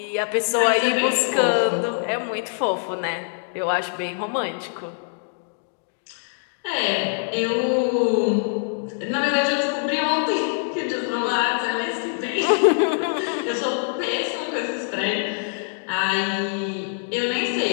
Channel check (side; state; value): right; silent; digital silence